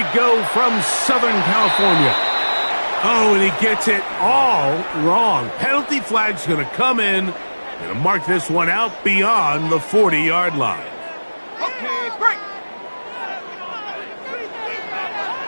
go from Southern California. Oh, and he gets it all wrong. Penalty flag's going to come in. Going to mark this one out beyond the 40-yard line. Okay, break.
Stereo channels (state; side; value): inverted; both; correlation -1.00